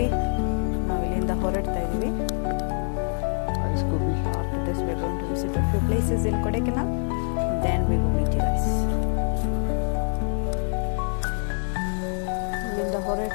ನಾವು ಇಲ್ಲಿಂದ ಹೊರಡ್ತಾ ಇದ್ದೀವಿ. After this we are going to visit a few places in Kodaikanal, then we will meet you guys. ಇಲ್ಲಿಂದ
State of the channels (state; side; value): silent; right; 61 dB below the other